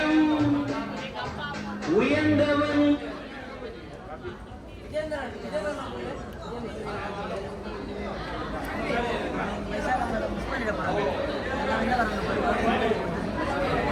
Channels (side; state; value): both; identical; correlation 1.00